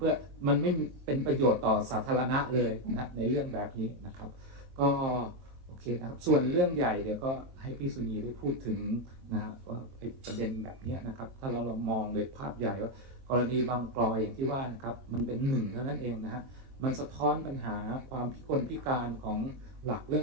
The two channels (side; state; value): left; late; 23 ms